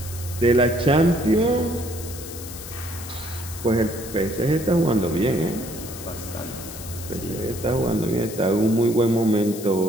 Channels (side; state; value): left; noise; hiss, 12 dB below the sound